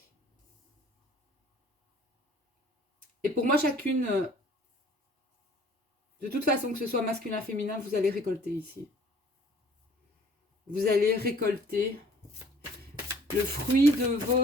Et pour moi, chacune, de toute façon, que ce soit masculin, féminin, vous allez récolter ici. Vous allez récolter le fruit de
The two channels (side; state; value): both; normal; correlation 0.53